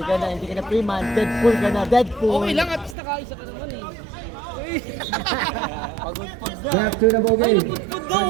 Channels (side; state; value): left; drops out; at 3.0 s